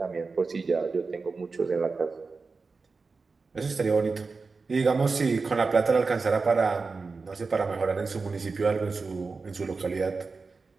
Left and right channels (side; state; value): left; quieter; 4.3 dB